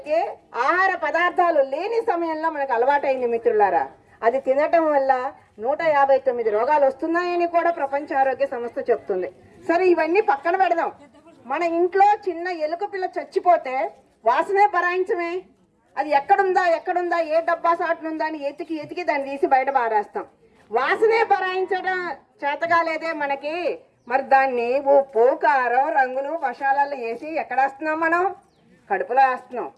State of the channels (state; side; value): identical; both; correlation 1.00